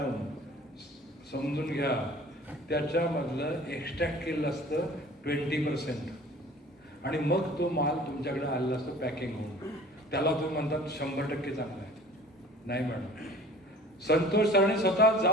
समजून घ्या, त्याच्यामधलं एक्स्ट्रॅक्ट केलेलं असतं 20%, आणि मग तो माल तुमच्याकडे आलेला असतो पॅकिंग होऊन, त्याला तुम्ही म्हणतात 100% चांगला आहे. नाही मॅडम, संतोष सरांनी स्वतः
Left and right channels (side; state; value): both; normal; correlation 0.47